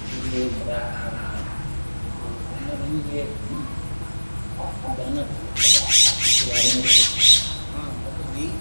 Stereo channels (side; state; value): both; inverted; correlation -1.00